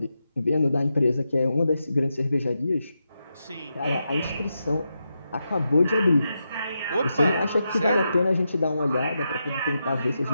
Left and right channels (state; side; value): inverted; both; correlation -0.87